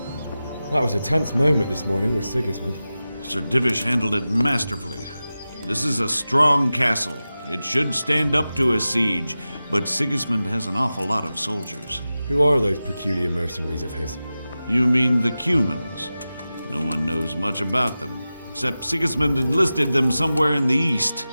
That was a tense moment this morning with Sigismund. Sir Divish handled it masterfully. This is a strong castle. It should stand up to a siege, but Sigismund has an awful lot of soldiers. Who are those peculiar mercenaries of his? You mean the Cumans? No one knows much about them, except Sigismund enlisted them somewhere in the east.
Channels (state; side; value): inverted; both; correlation -0.94